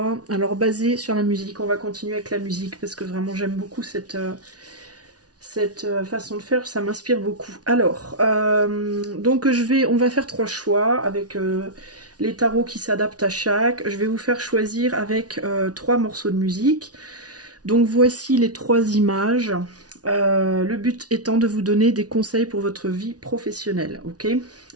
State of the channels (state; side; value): late; left; 0.68 ms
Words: Alors basé sur la musique, on va continuer avec la musique parce que vraiment j'aime beaucoup cette façon de faire, ça m'inspire beaucoup. Alors, donc on va faire 3 choix avec les tarots qui s'adaptent à chaque. Je vais vous faire choisir avec 3 morceaux de musique. Donc voici les 3 images. Le but étant de vous donner des conseils pour votre vie professionnelle, ok?